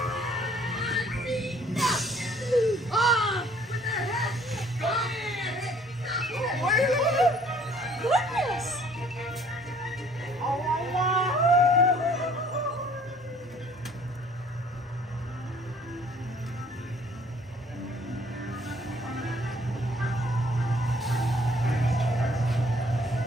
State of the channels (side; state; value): both; normal; correlation 0.58